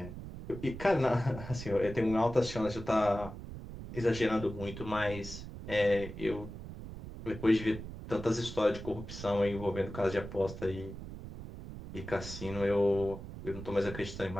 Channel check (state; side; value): noise; right; rumble, 11 dB below the sound